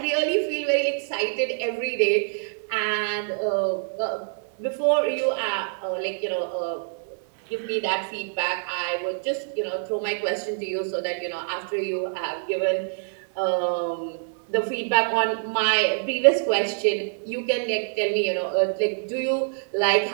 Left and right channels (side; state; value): left; silent; digital silence